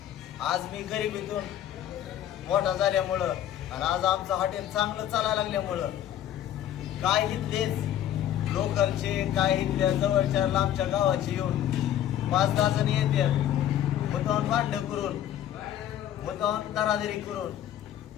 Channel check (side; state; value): right; quieter; 11.4 dB